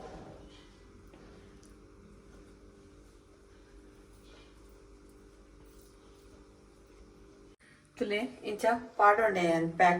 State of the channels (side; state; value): both; identical; correlation 1.00